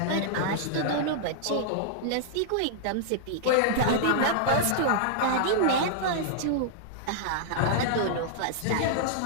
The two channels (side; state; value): both; different; correlation -0.01